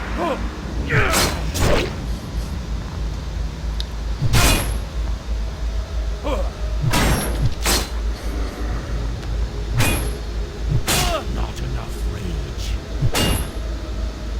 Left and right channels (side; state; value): both; identical; correlation 1.00